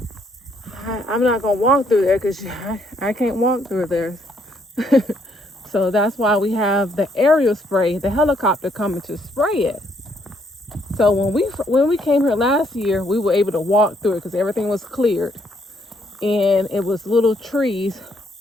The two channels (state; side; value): normal; both; correlation 0.70